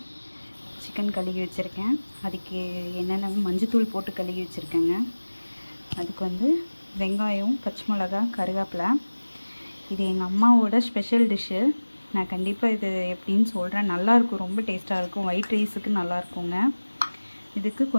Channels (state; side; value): inverted; both; correlation -1.00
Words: சிக்கன் கழுகி வச்சுருக்கேன். அதுக்கு என்னென்ன மஞ்சத்தூள் போட்டு கழுகி வச்சுருக்கேங்க. அதுக்கு வந்து வெங்காயம், பச்சை மிளகா, கருவேப்பிலை. இது எங்கள் அம்மாவோட ஸ்பெஷல் டிஷ்ஷு. நான் கண்டிப்பாக இது எப்படின்னு சொல்கிறேன். நல்லாயிருக்கும், ரொம்ப டேஸ்ட்டாக இருக்கும். ஒயிட் ரைஸுக்கு நல்லாயிருக்குங்க. இதுக்கு